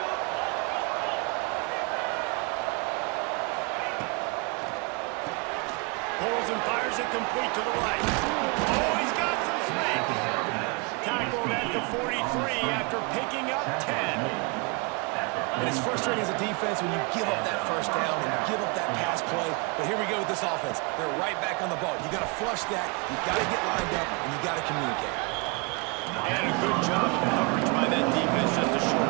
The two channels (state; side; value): quieter; left; 30.9 dB